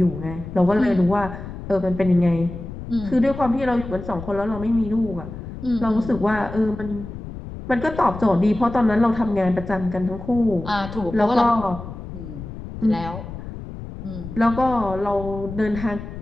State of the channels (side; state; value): left; noise; rumble, 10 dB below the sound